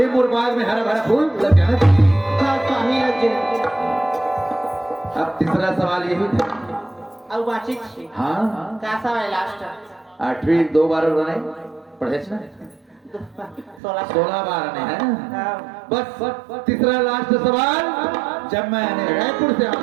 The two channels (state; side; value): drops out; left; at 13.8 s